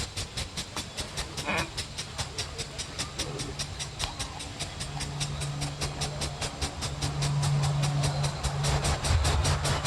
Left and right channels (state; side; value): identical; both; correlation 1.00